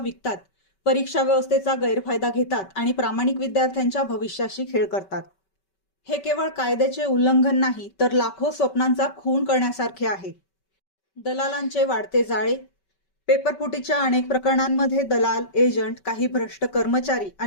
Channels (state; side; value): late; right; 5.2 ms